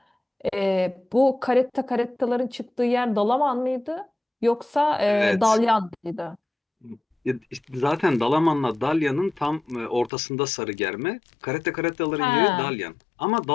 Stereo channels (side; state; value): right; drops out; at 10.1 s